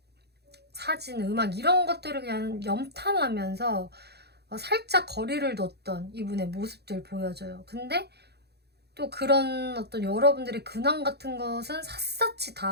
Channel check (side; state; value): left; late; 0.48 ms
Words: 사진, 음악 이런 것들을 그냥 염탐하면서 살짝 거리를 뒀던 이분의 모습들 보여져요. 근데 또 그런 어떤 여러분들의 근황 같은 것은 샅샅이